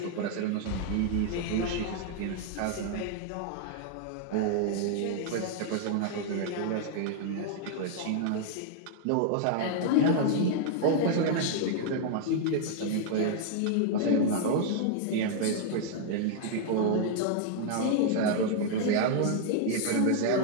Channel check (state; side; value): different; both; correlation 0.00